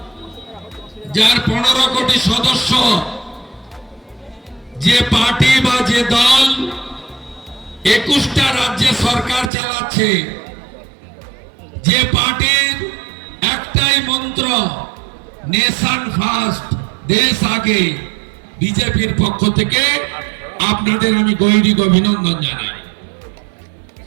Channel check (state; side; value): drops out; left; at 9.5 s